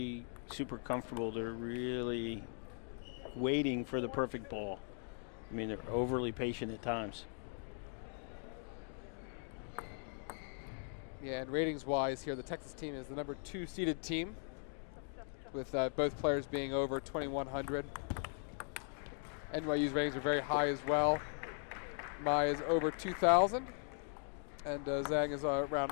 super comfortable, they're really waiting for the perfect ball. I mean, they're overly patient at times. Yeah, and ratings-wise here, the Texas team is the number 2 seeded team, with both players being over 2,100. NYU's ratings are very high as well. Mai is over 2,000, and Zhang is around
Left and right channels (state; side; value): silent; right; 51 dB below the other